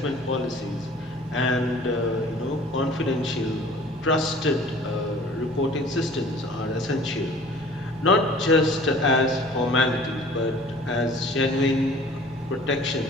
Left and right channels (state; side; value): normal; both; correlation 0.48